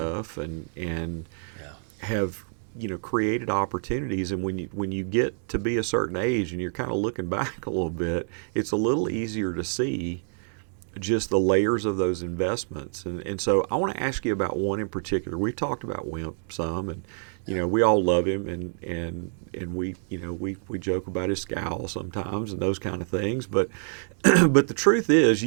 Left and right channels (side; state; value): left; silent; 60 dB below the other